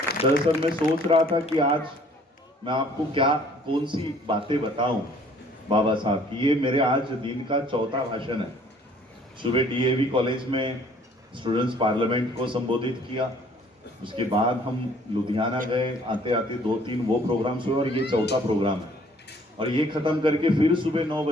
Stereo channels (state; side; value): normal; both; correlation 0.57